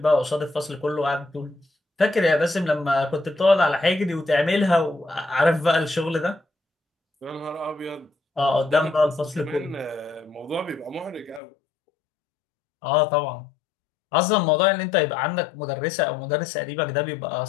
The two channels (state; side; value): drops out; right; at 11.4 s